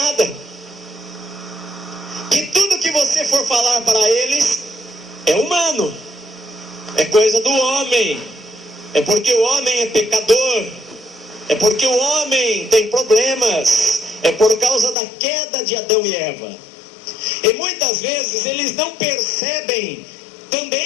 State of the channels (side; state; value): right; drops out; at 15.0 s